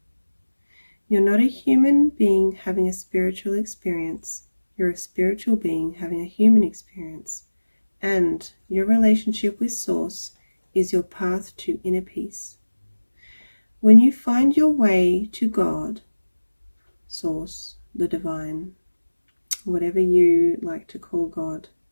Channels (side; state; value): both; inverted; correlation -1.00